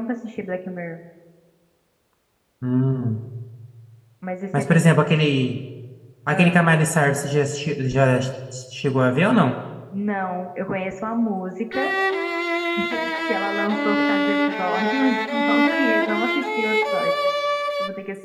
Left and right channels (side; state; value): both; identical; correlation 1.00